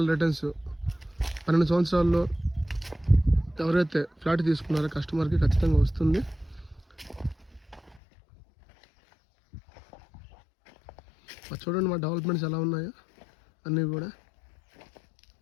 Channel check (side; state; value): right; drops out; at 8.0 s